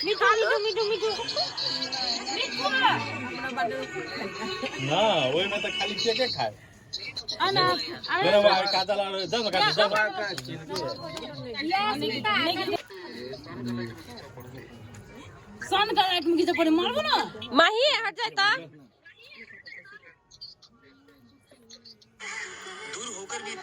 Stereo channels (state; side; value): identical; both; correlation 1.00